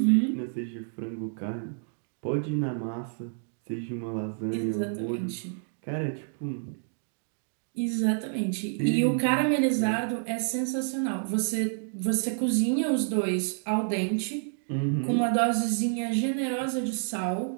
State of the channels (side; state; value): left; silent; digital silence